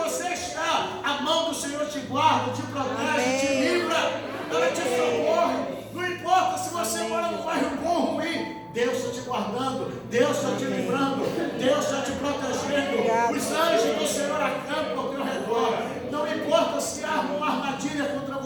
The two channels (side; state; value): both; identical; correlation 1.00